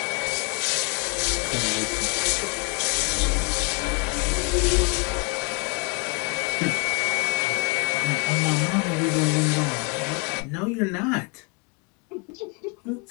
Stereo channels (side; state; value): right; quieter; 33.8 dB